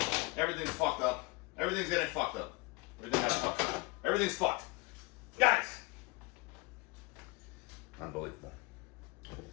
Everything's fucked up. Everything's getting fucked up. Everything's fucked. Guys, Unbelievable.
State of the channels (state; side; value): quieter; right; 24.9 dB